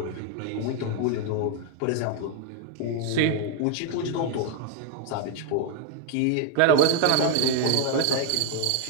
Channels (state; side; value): different; both; correlation 0.00